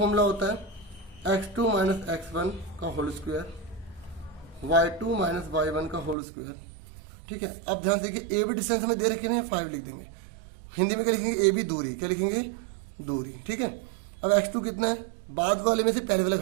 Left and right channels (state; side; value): drops out; left; at 6.2 s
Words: होता है? x2 माइनस x1 का whole square, y2 minus y1 का होल स्क्वायर। ठीक है, अब ध्यान से देखिए, ए बी डिस्टेंस हमें दे रखे हैं, 5 लिख देंगे। हिंदी में क्या लिखेंगे? ए बी दूरी। क्या लिखेंगे? दूरी। ठीक है, अब x2 कितना है? बाद वाले में से पहले वाला